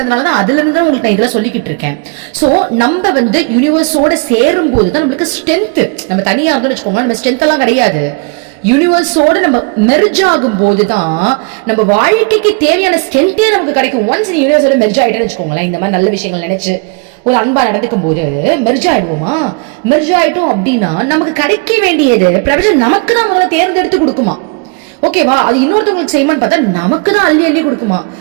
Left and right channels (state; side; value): quieter; left; 31.5 dB